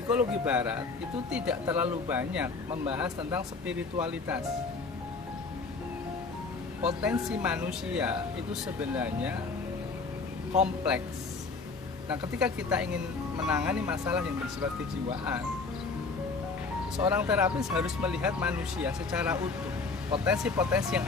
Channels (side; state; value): right; quieter; 4.2 dB